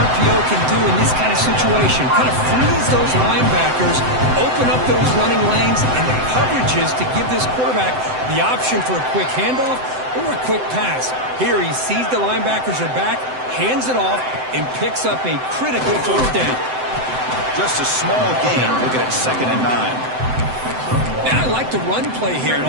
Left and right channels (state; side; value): late; left; 7.8 ms